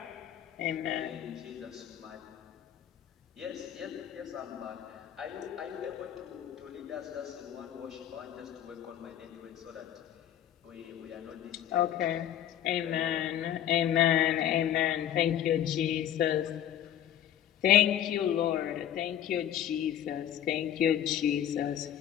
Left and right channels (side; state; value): right; quieter; 10.8 dB